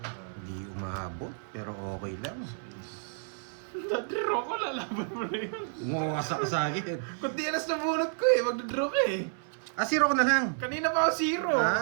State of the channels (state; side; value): silent; left; 57 dB below the other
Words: Hindi umaabot, pero okay lang. Nag-draw ko, lalaban mo na yun. Umawasak ka sa akin. Kundi alas na bunot ko eh, mag-draw ka eh. Ah, zero ko na lang. Kanina pa ako zero.